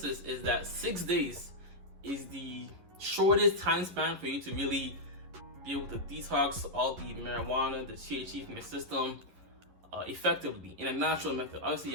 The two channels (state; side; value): late; left; 11 ms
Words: is that 6 days is the shortest time span for you to really be able to detox all the marijuana, the THC from your system effectively in a natural method. Obviously,